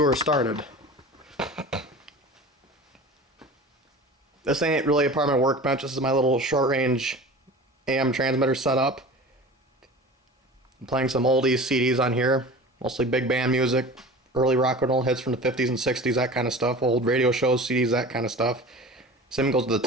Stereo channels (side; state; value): both; normal; correlation 0.37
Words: started. This ain't really a part of my workbench. This is my little short-range AM transmitter setup. I'm playing some oldies CDs on here, mostly big band music, early rock and roll hits from the 50s and 60s, that kind of stuff, old radio shows, CDs, that kind of stuff. Same goes to the